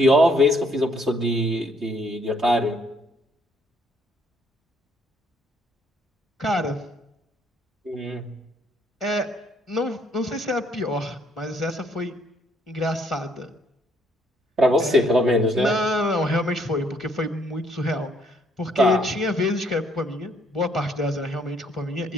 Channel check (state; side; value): normal; both; correlation 0.67